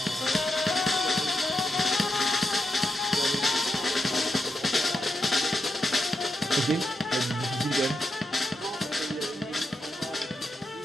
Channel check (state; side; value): normal; both; correlation 0.84